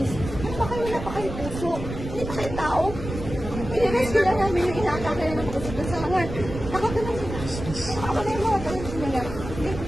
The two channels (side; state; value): right; noise; rumble, 8 dB below the sound